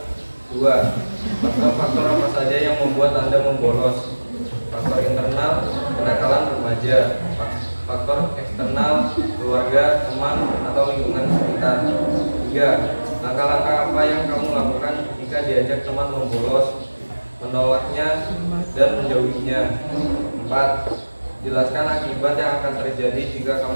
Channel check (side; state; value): both; inverted; correlation -1.00